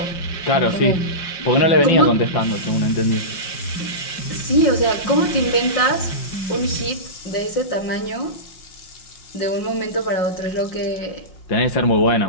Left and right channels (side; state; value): right; late; 5.6 ms